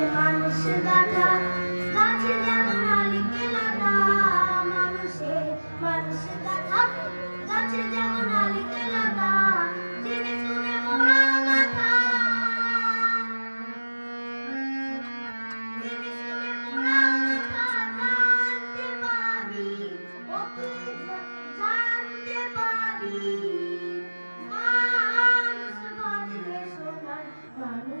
মানুষ গাথা গাছে যেমন আলিকে লাথা মানুষে মানুষ গাথা গাছে যেমন আলিকে লাথা জেনে শুনে মোরা মাথা জেনে শুনে মোরা মাথা জানতে পাবি ও তুই জানতে পাবি মানুষ বাজলে সোনার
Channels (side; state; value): both; inverted; correlation -1.00